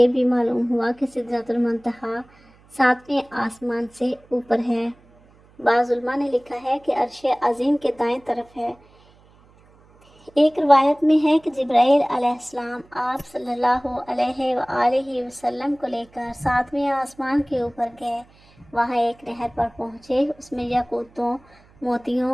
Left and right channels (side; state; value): right; noise; hum, 29 dB below the sound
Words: بھی معلوم ہوا کہ سدرۃ المنتہا 7ویں آسمان سے اوپر ہے۔ بعض علماء نے لکھا ہے کہ عرش عظیم کے دائیں طرف ہے۔ ایک روایت میں ہے کہ جبرائیل علیہ السلام آپ صلی اللہ علیہ وآلہ وسلم کو لے کر 7ویں آسمان کے اوپر گئے۔ وہاں ایک نہر پر پہنچے، اس میں یاقوتوں،